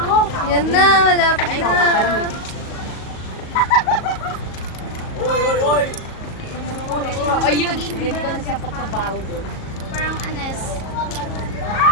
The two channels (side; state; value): right; late; 38 ms